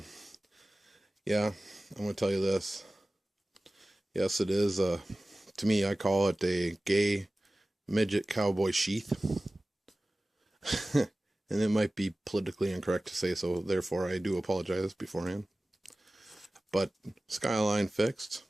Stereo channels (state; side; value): normal; both; correlation 0.97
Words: yeah, I'm going to tell you this. Yes, it is. To me, I call it a gay midget cowboy sheath. And it might be politically incorrect to say so. Therefore, I do apologize beforehand. But Skyline fixed,